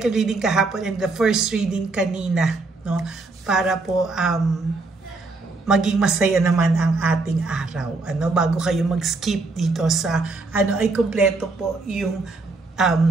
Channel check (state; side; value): quieter; left; 3.6 dB